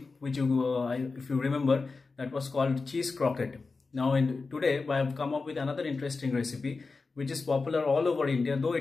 which if you remember, that was called cheese croquette. Now today I have come up with another interesting recipe which is popular all over India, though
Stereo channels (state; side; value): quieter; right; 4.1 dB